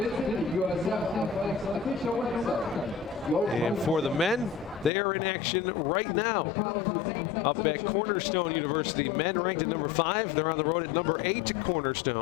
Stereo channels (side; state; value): right; drops out; at 4.9 s